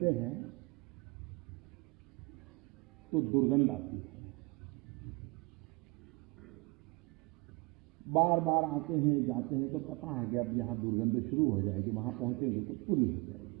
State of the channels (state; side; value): quieter; left; 27.3 dB